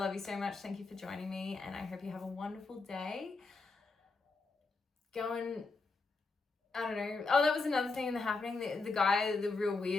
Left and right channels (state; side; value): quieter; right; 3.9 dB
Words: you so much. Thank you for joining me. And I hope you have a wonderful day. I don't know. Oh, that was another thing in The Happening. The guy, the real